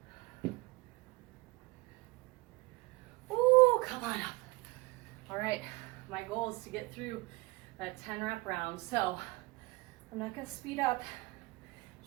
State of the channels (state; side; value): quieter; left; 23.8 dB